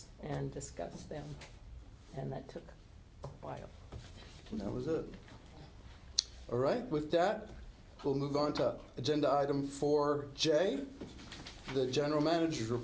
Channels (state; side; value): identical; both; correlation 1.00